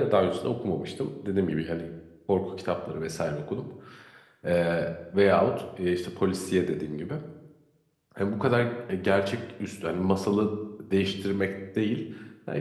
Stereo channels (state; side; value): identical; both; correlation 1.00